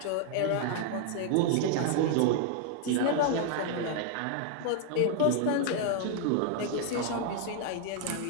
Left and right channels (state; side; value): different; both; correlation -0.01